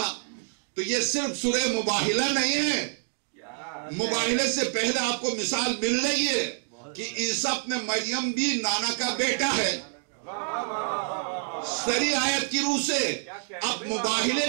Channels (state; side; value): silent; left; digital silence